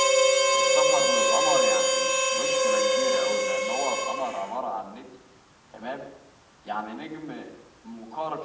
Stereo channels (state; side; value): identical; both; correlation 1.00